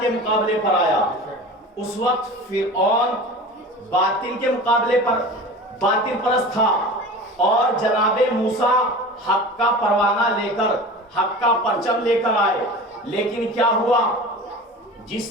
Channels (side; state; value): both; normal; correlation 0.35